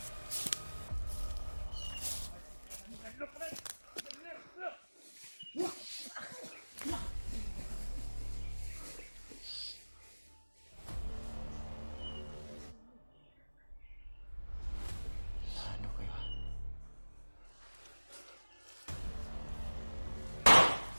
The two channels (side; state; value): both; inverted; correlation -1.00